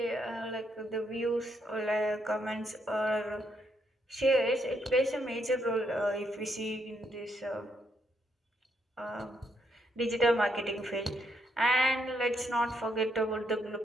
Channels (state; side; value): normal; both; correlation 0.76